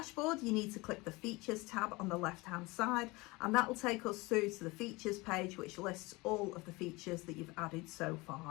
you need to click the features tab on the left hand side, and that will take us through to the features page, which lists all of the features that you've added so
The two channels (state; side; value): quieter; right; 23.6 dB